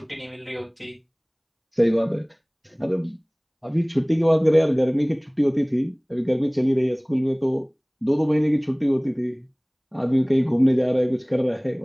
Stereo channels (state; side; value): identical; both; correlation 1.00